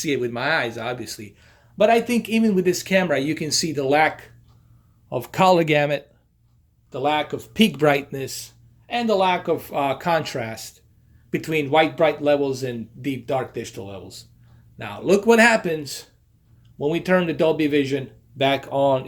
it with my eyes, obviously. But I think even with this camera, you can see the lack of color gamut, the lack of peak brightness, and the lack of contrast between white bright levels and deep dark digital levels. Now, look what happens when we turn the Dolby Vision back on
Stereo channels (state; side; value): identical; both; correlation 1.00